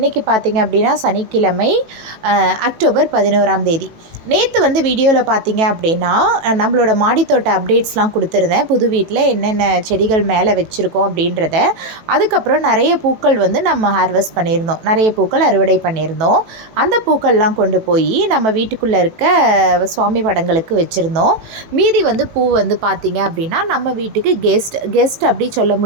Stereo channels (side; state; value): left; late; 18 ms